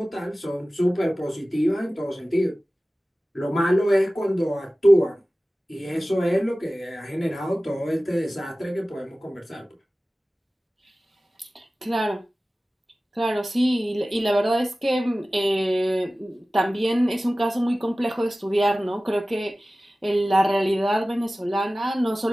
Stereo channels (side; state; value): both; normal; correlation 0.97